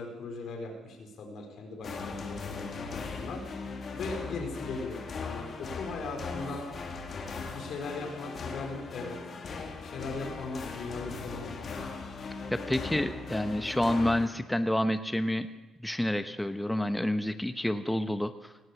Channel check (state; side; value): normal; both; correlation 0.92